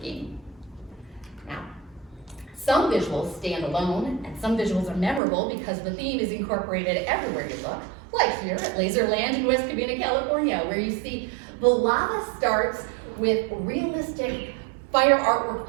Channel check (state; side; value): drops out; left; at 5.2 s